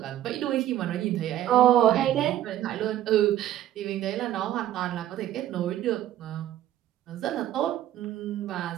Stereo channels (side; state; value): left; quieter; 12.6 dB